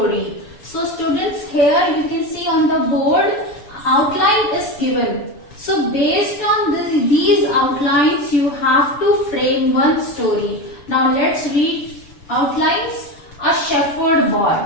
So students, here you can see on the board outline is given. So based on these outlines you have to frame one story. Now let's read outlines. A shepherd boy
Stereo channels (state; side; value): late; right; 6.9 ms